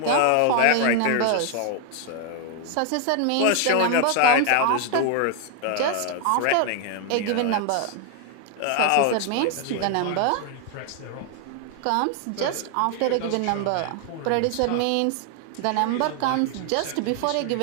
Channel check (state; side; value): different; both; correlation 0.00